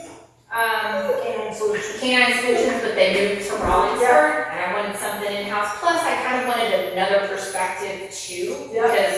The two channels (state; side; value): identical; both; correlation 1.00